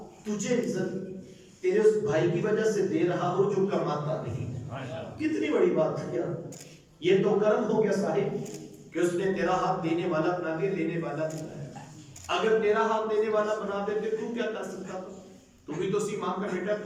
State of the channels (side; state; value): both; identical; correlation 1.00